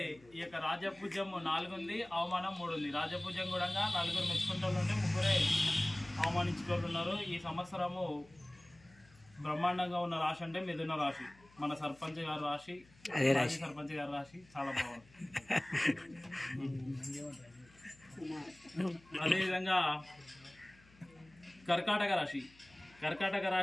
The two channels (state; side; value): noise; left; hum, 27 dB below the sound